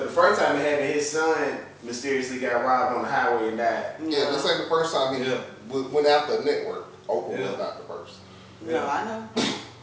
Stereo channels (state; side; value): identical; both; correlation 1.00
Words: the first time it happened, his son mysteriously got robbed on the highway and died. Yeah, this ain't the first time he went after a network. Oprah was not the first. No, I know.